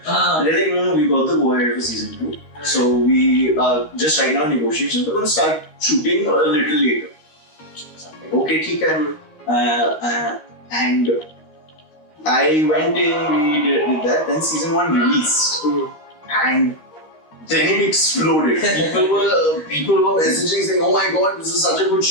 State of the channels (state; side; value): late; right; 13 ms